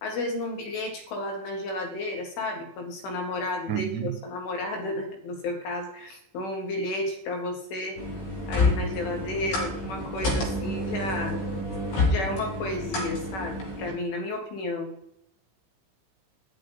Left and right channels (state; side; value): late; right; 16 ms